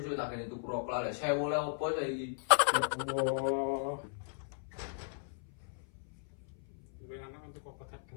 tak kene tuku rokok lek 1000 lek opo saiki. Wah. Gue anak untuk obat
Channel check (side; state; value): right; silent; 54 dB below the other